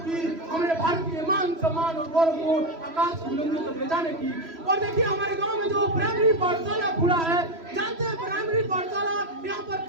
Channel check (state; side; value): late; left; 3.0 ms